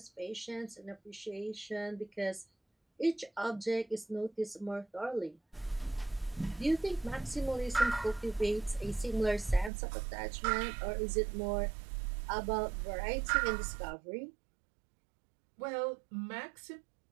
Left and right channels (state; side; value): drops out; left; at 9.7 s